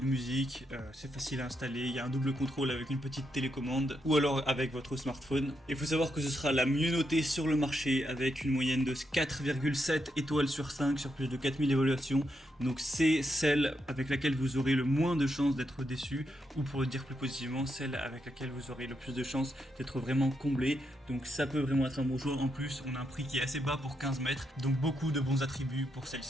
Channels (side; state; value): both; normal; correlation 0.82